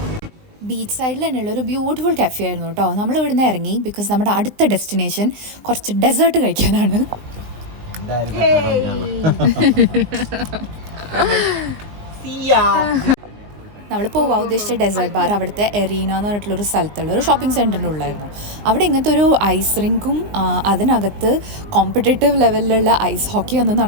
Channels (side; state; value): left; late; 19 ms